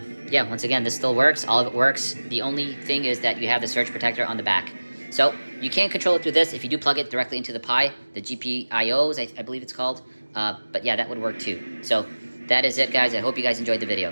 yeah, once again, this still works. All of it works. The only thing is that you have the surge protector on the back. So you can't control it through this if you do plug it directly into the Pi, the GPIOs, I believe it's called. But yeah, that would work too. So that is it, guys. I hope you guys enjoyed the video.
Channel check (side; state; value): both; inverted; correlation -1.00